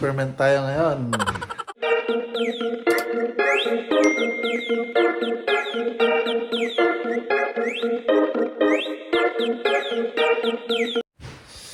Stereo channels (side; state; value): both; identical; correlation 1.00